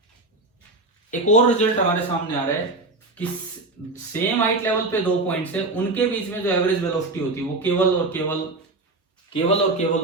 एक और रिजल्ट हमारे सामने आ रहा है कि सेम हाइट लेवल पे दो पॉइंट्स है, उनके बीच में जो एवरेज वेलोसिटी होती है वो केवल और केवल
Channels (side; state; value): left; quieter; 3.1 dB